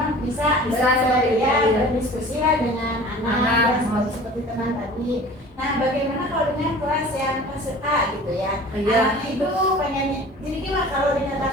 bisa seperti ya, itu, ya. berdiskusi lah dengan anak ya, seperti teman tadi. Nah, bagaimana kalau dengan kelas yang kelas A gitu ya? Iya. Anaknya itu pengen, jadi gimana kalau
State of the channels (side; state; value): both; normal; correlation 0.43